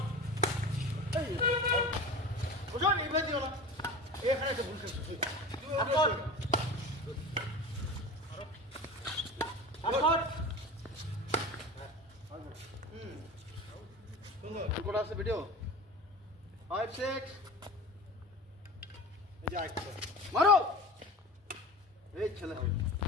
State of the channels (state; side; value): normal; both; correlation 0.33